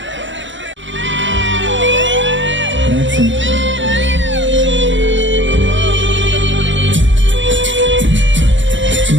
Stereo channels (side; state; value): left; late; 0.54 ms